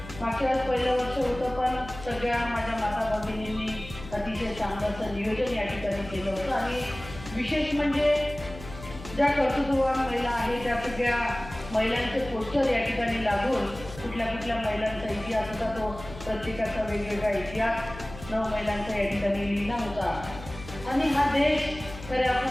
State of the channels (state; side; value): noise; left; hum, 14 dB below the sound